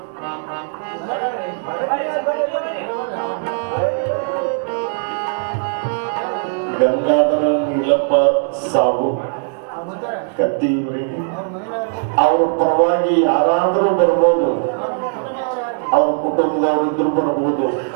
ಗಂಗಾಧರ ನೀಲಪ್ಪ ಸಾಹು ಕತ್ತಿಯವರಿಗೆ ಅವರ ಪರವಾಗಿ ಯಾರಾದರೂ ಬರ್ಬೋದು, ಅವ್ರ ಕುಟುಂಬದವರಿದ್ರು ಬರ್ಬೋದು,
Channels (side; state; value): left; silent; digital silence